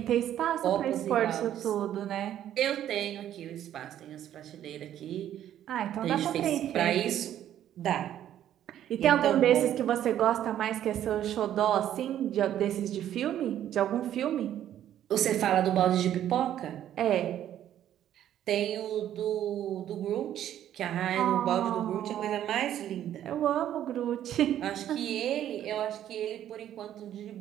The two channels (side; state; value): left; quieter; 11.2 dB